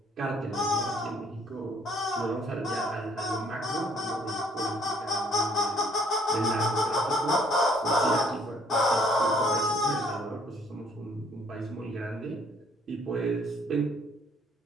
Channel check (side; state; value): both; normal; correlation 0.62